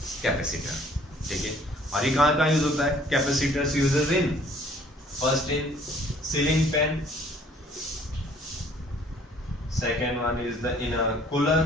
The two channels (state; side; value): normal; both; correlation 0.58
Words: कैपेसिटर, ठीक है। और ये कहाँ यूज होता है, capacitors uses in first in ceiling fan, second one is the in a cooler